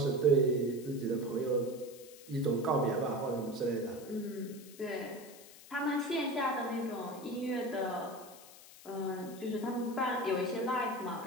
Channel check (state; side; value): noise; left; hiss, 19 dB below the sound